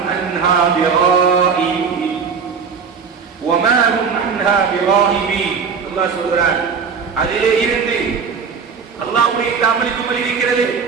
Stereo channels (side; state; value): left; quieter; 5.9 dB